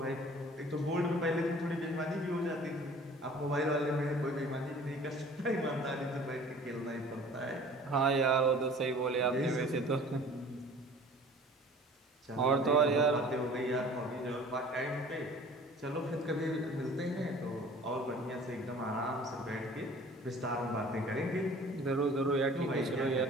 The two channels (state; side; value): normal; both; correlation 0.47